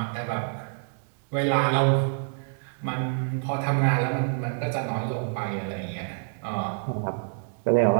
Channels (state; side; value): silent; left; 60 dB below the other